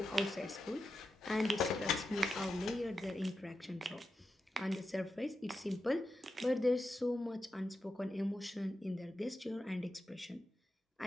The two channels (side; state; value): both; normal; correlation 0.89